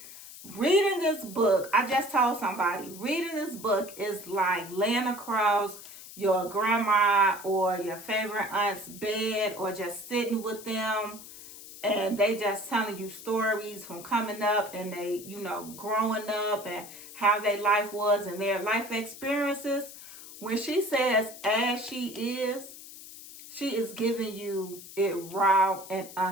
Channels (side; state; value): left; noise; hiss, 15 dB below the sound